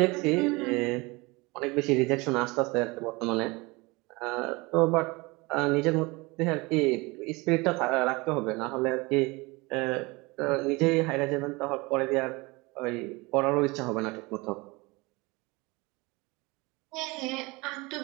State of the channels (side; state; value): left; quieter; 24.7 dB